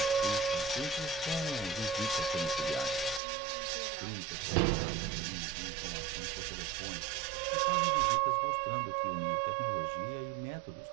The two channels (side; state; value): left; drops out; at 3.2 s